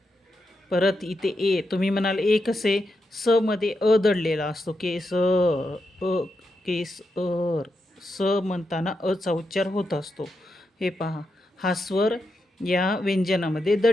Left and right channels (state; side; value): normal; both; correlation 0.85